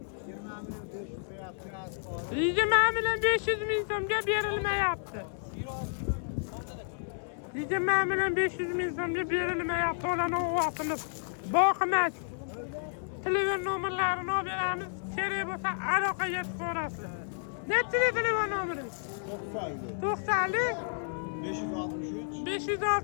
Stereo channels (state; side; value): silent; right; 57 dB below the other